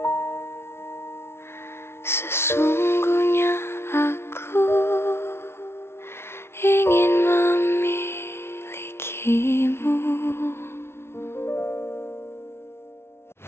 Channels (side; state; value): right; late; 0.12 ms